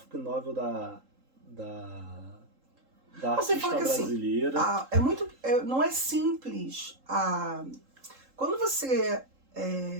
novel da artista brasileira. Assim, não é simples. Quando você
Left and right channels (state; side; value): late; left; 3.8 ms